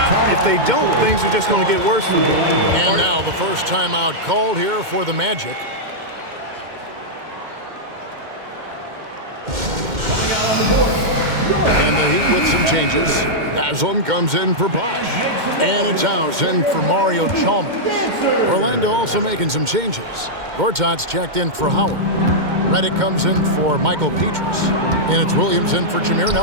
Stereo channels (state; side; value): late; left; 2.1 ms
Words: If they don't, things are just going to get worse from here. And now the first timeout called here for the Magic. And the Heat with some changes. Haslam comes in for Bosch. And it's House in for Mario Chalmers. Orlando also making some changes. Gortat's checked in for Howard. Redick comes in for Michael Petrus. And it's Williams in for Jameer